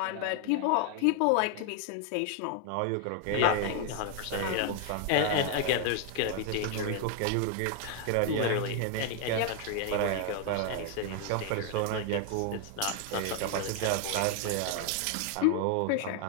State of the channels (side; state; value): both; different; correlation 0.00